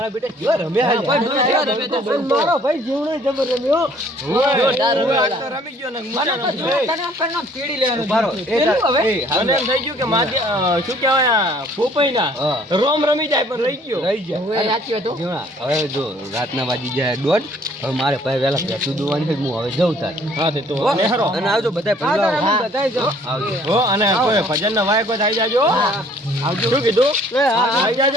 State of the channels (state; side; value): normal; both; correlation 0.58